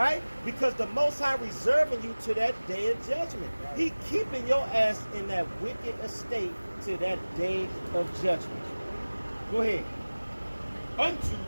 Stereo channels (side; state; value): both; inverted; correlation -1.00